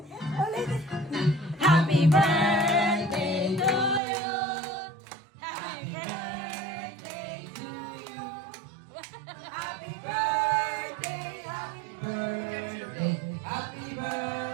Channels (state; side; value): drops out; left; at 4.0 s